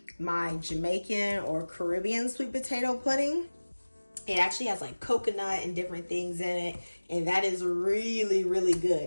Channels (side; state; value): both; inverted; correlation -1.00